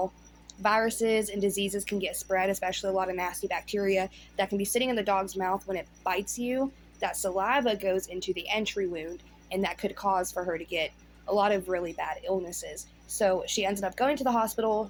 viruses and diseases can get spread, especially a lot of nasty bacteria that can be sitting in the dog's mouth when it bites you, that saliva goes into the entry wound, and that could cause for her to get a lot of really bad illnesses. So she ended up going to the hospital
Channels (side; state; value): both; identical; correlation 1.00